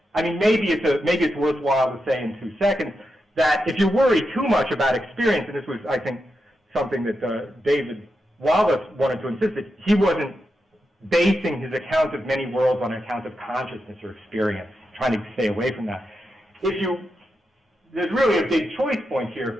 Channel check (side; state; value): both; normal; correlation 0.87